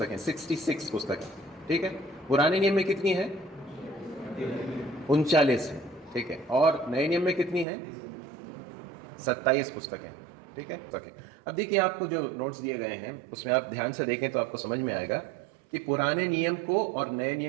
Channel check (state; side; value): drops out; left; at 7.7 s